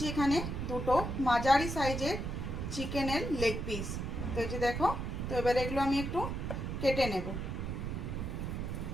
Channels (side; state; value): right; noise; rumble, 3 dB below the sound